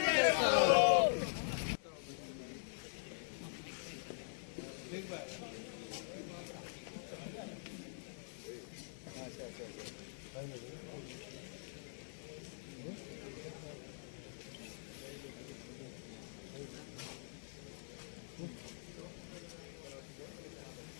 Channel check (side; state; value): right; silent; digital silence